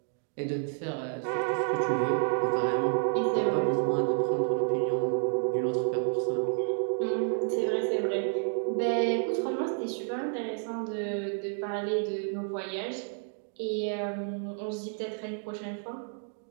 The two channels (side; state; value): left; silent; 58 dB below the other